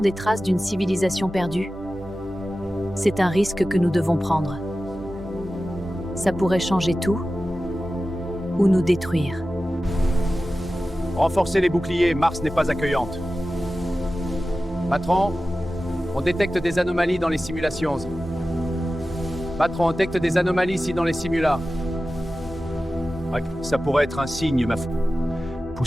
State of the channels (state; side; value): normal; both; correlation 0.95